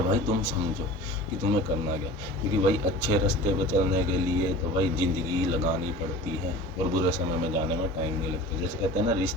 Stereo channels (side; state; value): both; normal; correlation 0.39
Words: भाई तुम समझो कि तुम्हें करना क्या, क्योंकि भाई अच्छे रास्ते पे चलने के लिए तो भाई ज़िंदगी लगानी पड़ती है और बुरे समय में जाने में टाइम नहीं लगता। जैसे कहते हैं ना